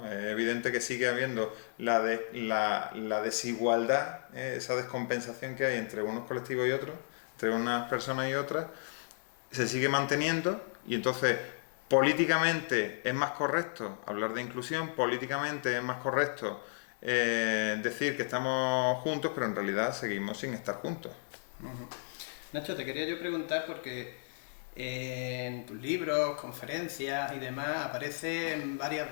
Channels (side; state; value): right; silent; digital silence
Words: Es evidente que sigue habiendo la desigualdad, esa descompensación que hay entre unos colectivos y otros, entre unas personas y otras, se sigue manteniendo y entonces políticamente es más correcto hablar de inclusión, políticamente es más correcto decir que estamos juntos, pero en realidad seguimos sin estar juntos. Nacho, te quería yo preguntar porque en tus libros, conferencias y demás aparecen varias